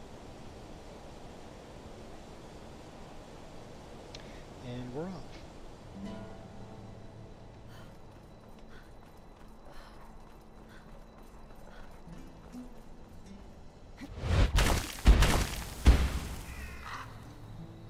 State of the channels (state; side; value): identical; both; correlation 1.00